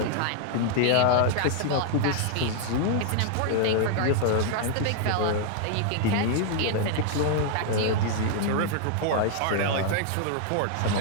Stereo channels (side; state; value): both; different; correlation 0.00